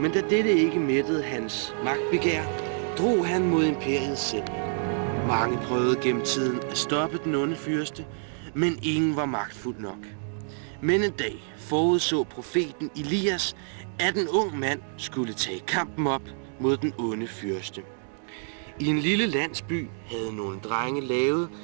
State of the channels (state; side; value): silent; left; 60 dB below the other